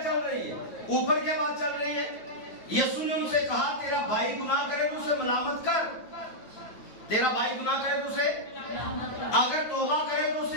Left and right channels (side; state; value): right; late; 9.3 ms